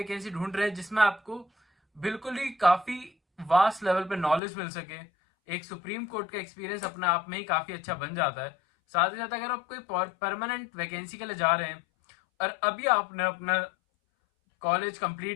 ढूंढ रहे हैं जिसमें आपको बिल्कुल ही काफी वास्ट लेवल पे नॉलेज मिल सके, एक सुप्रीम कोर्ट का एक्सपीरियंस अपने आप में ही काफी अच्छा बन जाता है। साथ ही साथ अगर आप कोई परमानेंट वैकेंसी के लिए जा रहे हैं और अभी आपने अपना कॉलेज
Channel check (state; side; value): drops out; right; at 4.4 s